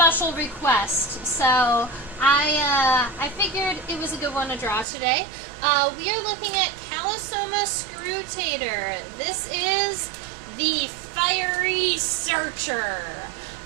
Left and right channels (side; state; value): left; drops out; at 4.9 s